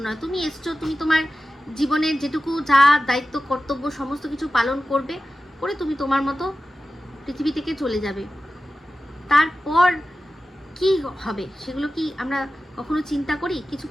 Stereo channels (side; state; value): both; normal; correlation 0.94